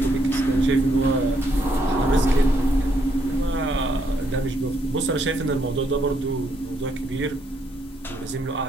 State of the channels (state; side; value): normal; both; correlation 0.73